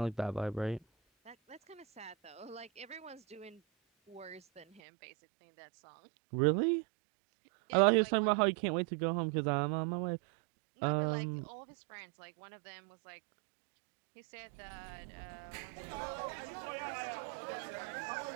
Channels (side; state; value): left; drops out; at 4.8 s